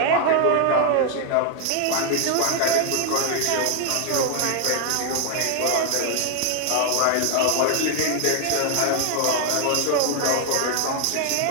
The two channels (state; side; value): different; both; correlation 0.00